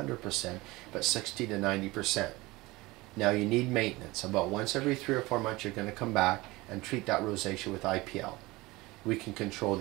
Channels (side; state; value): left; quieter; 21.2 dB